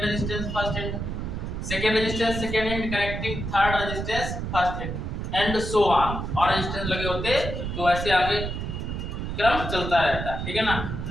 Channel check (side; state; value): right; noise; rumble, 4 dB below the sound